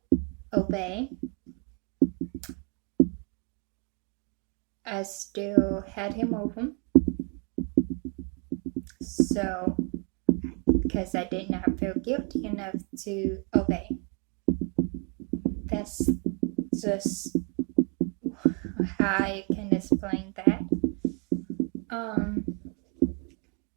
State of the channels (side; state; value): left; quieter; 38.5 dB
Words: obey, I still had him over. So, because I did not feel guilty enough to obey. That's just how I can explain that.